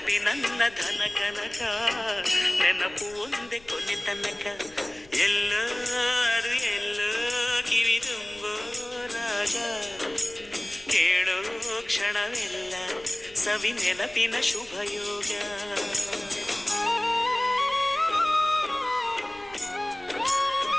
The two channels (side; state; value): left; noise; rumble, 25 dB below the sound